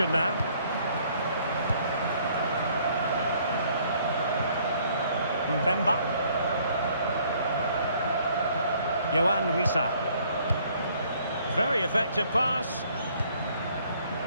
now. Mbemba. Yohan Wissa. Very effective pass.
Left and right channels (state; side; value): inverted; both; correlation -0.62